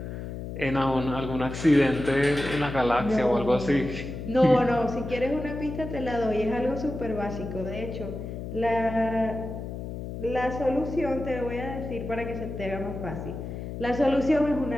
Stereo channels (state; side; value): noise; left; hum, 7 dB below the sound